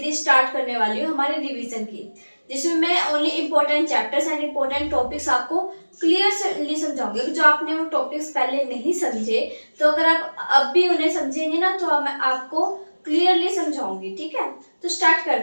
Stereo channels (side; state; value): both; inverted; correlation -1.00